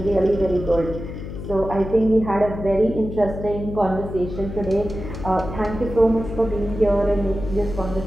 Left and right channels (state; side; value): noise; left; hum, 9 dB below the sound